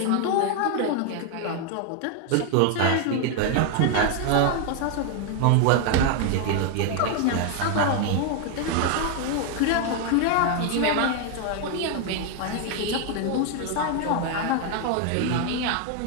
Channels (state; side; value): different; both; correlation 0.01